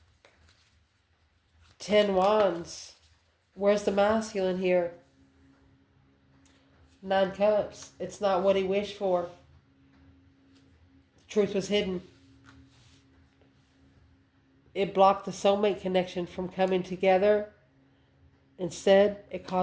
10 Wands. Where's the masculine here? 9 Cups. It's not what he wished for. The truth was hidden. It blocked the soulmate connection from coming together. Instead, it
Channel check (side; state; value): both; identical; correlation 1.00